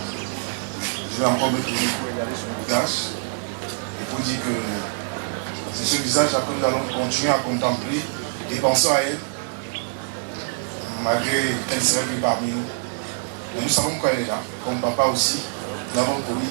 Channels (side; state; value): left; silent; digital silence